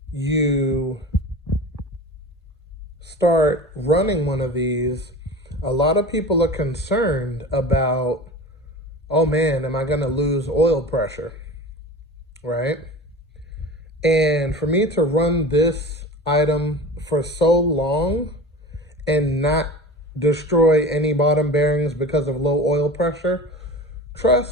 you start running one of these, a lot of people are concerned about, oh man, am I going to lose oil pressure, right? And for me to run this item for so long and not destroy any bottom bearings because of low oil pressure,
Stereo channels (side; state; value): both; normal; correlation 0.34